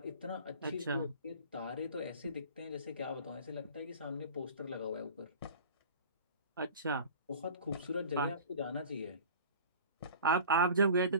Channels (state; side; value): inverted; both; correlation -0.40